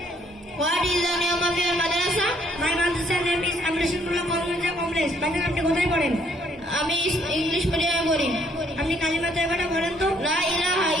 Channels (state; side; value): normal; both; correlation 0.66